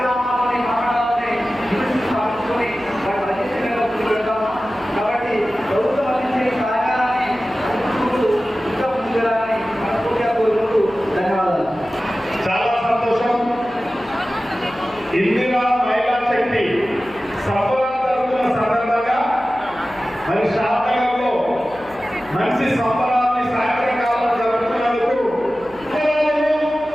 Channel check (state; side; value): noise; left; hum, 25 dB below the sound